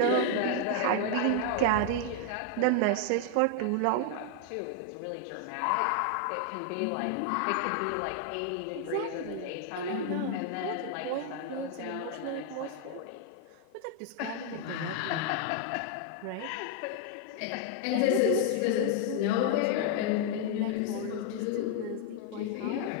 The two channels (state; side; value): different; both; correlation 0.00